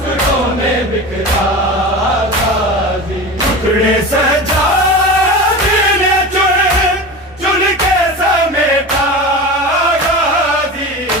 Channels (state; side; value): normal; both; correlation 0.29